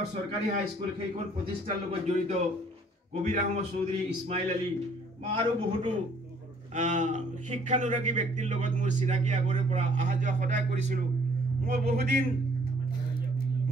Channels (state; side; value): normal; both; correlation 0.60